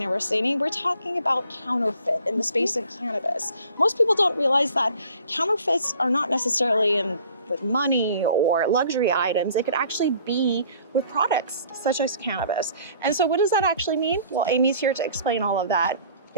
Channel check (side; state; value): both; inverted; correlation -0.53